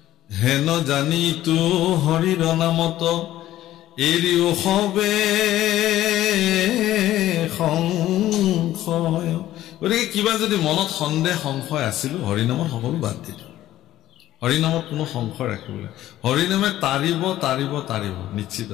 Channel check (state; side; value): quieter; right; 14.0 dB